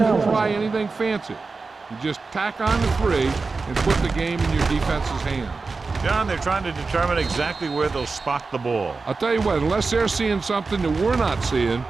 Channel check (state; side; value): quieter; left; 4.1 dB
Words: try anything fancy. You just tack on the 3 and put the game in your defense's hands. John, they're trying to determine exactly where they'll spot the ball. I'll tell you what, unless they're seeing something that we're not seeing,